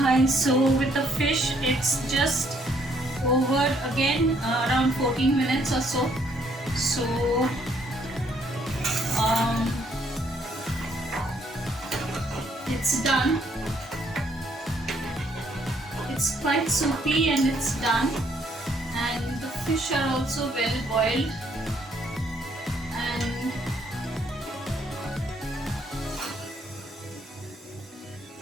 Hi, so with the fish, it's just over again around 14 minutes or so. So it's done. It's quite soupy and it's done. And the fish are also well boiled. And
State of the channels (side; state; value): both; normal; correlation 0.68